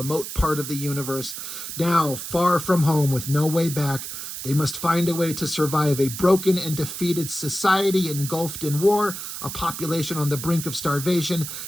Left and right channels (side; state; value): right; noise; hiss, 8 dB below the sound